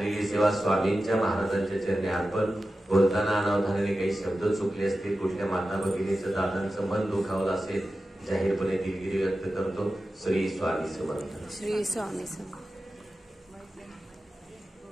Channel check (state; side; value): normal; both; correlation 0.93